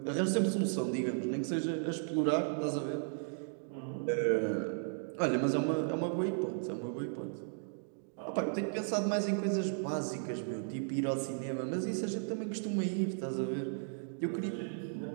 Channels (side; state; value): left; silent; digital silence